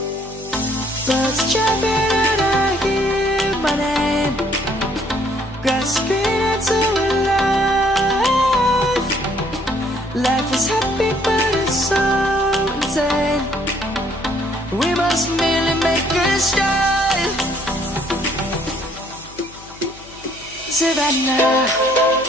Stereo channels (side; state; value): left; noise; hum, 22 dB below the sound